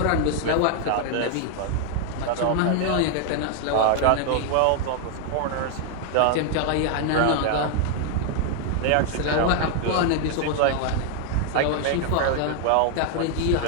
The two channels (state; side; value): different; both; correlation 0.00